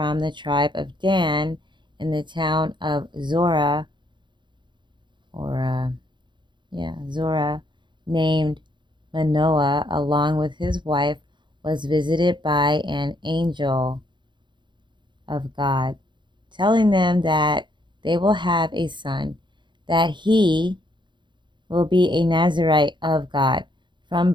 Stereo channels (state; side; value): late; left; 0.23 ms